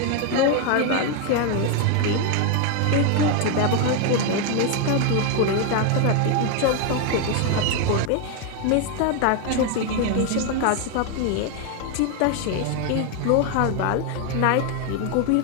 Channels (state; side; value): different; both; correlation 0.01